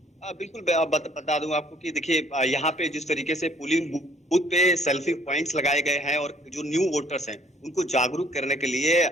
बिल्कुल बता दूं आपको कि देखिए यहाँ पे जिस तरीके से पोलिंग बूथ पे सेल्फी पॉइंट्स लगाए गए हैं और जो न्यू वोटर्स हैं उनको जागरूक करने के लिए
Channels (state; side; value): normal; both; correlation 0.60